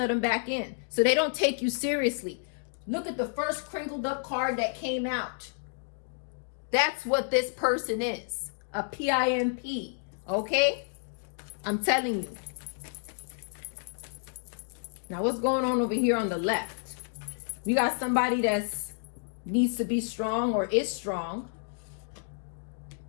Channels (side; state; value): right; silent; digital silence